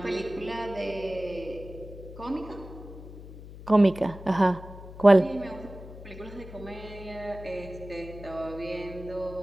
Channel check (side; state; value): left; noise; hum, 15 dB below the sound